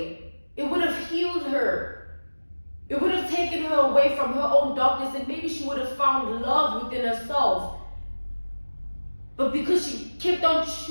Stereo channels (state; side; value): inverted; both; correlation -1.00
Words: it would have healed her. It would have taken her away from her own darkness, and maybe she would have found love within herself. But because she kept on